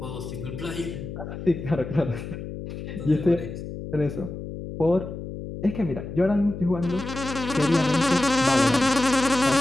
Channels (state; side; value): noise; left; hum, 9 dB below the sound